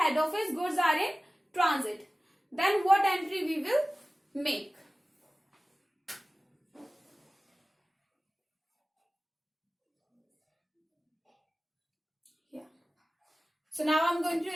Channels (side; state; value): both; normal; correlation 0.97